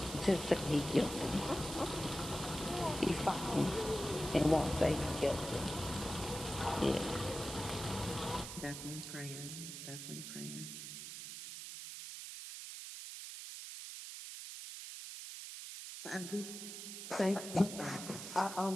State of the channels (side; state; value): right; noise; hiss, 8 dB below the sound